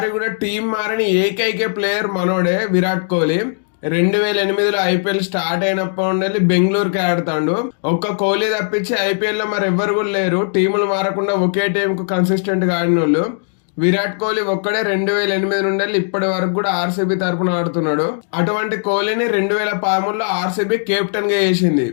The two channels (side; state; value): right; silent; digital silence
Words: కూడా టీం మారని ఏకైక ప్లేయర్ మనోడే విరాట్ కోహ్లీ. 2008లో ఐపీఎల్ స్టార్ట్ అయినప్పటి నుండి బెంగళూరుకి ఆడుతాడు. ఒక్క కోహ్లీ తప్పించి ఐపీఎల్ లో మరి ఎవ్వరు కూడా లేరు టీములు మారకుండా ఒకే టీం కు కన్సిస్టెంట్ గా ఆడిన వాళ్ళు. విరాట్ కోహ్లీ ఒక్కడే 2008 నుండి ఇప్పటి వరకు కూడా ఆర్సీబీ తరపున ఆడుతున్నాడు. అటువంటి కోహ్లీని 2013లో ఆర్సీబీ కెప్టెన్ గా చేసింది.